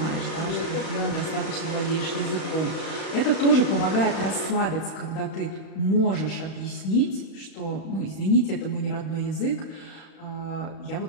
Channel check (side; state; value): right; late; 35 ms